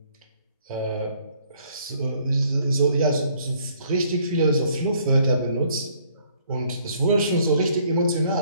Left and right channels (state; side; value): inverted; both; correlation -0.64